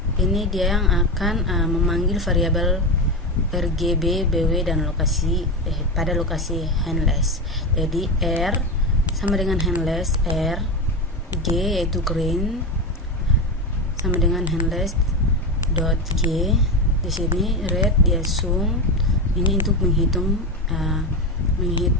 Ini dia yang akan memanggil variabel RGB, BW dan lokasi pada lokasi handless. Jadi R sama dengan handless R, G yaitu green sama dengan handless dot G. Di sini red dia zoom. Ini untuk menghitung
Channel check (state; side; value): normal; both; correlation 0.18